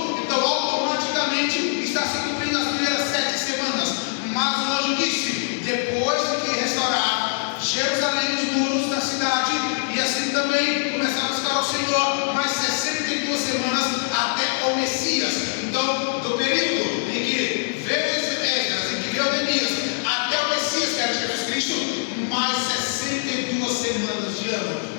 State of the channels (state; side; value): silent; right; digital silence